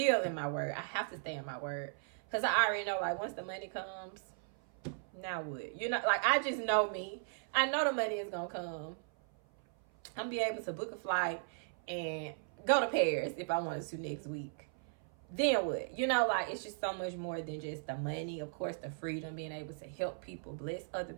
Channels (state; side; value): silent; left; 53 dB below the other